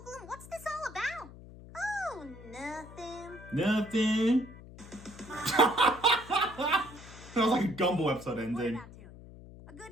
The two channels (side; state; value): left; noise; hum, 17 dB below the sound